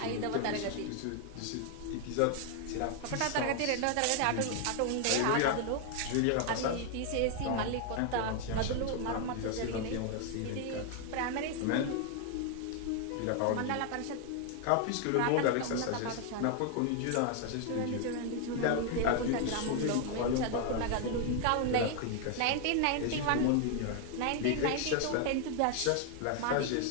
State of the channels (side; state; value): both; different; correlation 0.00